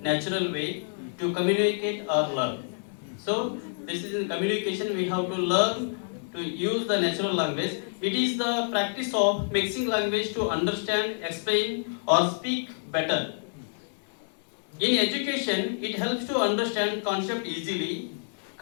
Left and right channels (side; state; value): right; silent; 59 dB below the other